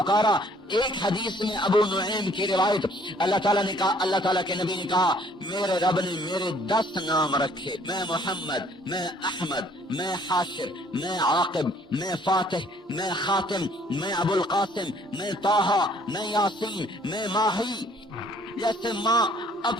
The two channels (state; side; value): normal; both; correlation 0.60